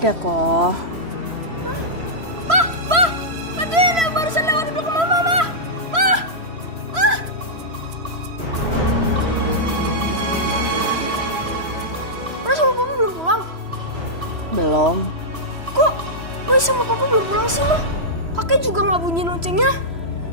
kok. Ma, tadi ada barusan lewat di belakang Mama, Ma. Roy sama Papa belum pulang? Belum. Kok Roy sama Papa belum pulang sih, Ma? Kakek juga nggak bunyi loncengnya.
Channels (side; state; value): left; late; 3.0 ms